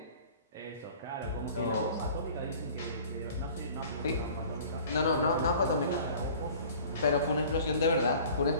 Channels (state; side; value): inverted; both; correlation -0.46